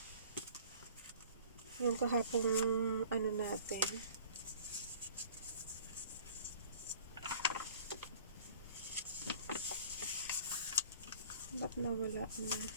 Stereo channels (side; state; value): both; inverted; correlation -0.48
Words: Yung kahapong ano natin. Ba't nawala na?